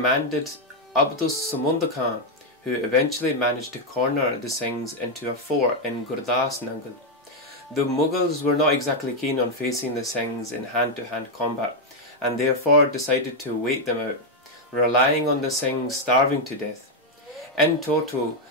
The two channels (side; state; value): both; normal; correlation 0.02